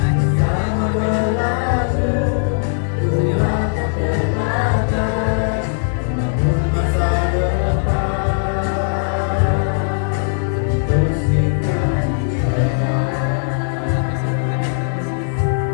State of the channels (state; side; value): silent; right; digital silence